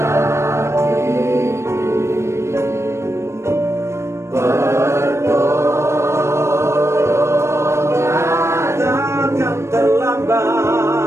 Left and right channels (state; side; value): late; left; 0.13 ms